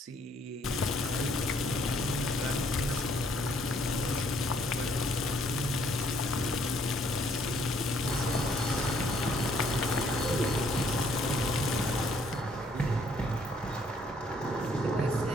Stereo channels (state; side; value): normal; both; correlation 0.66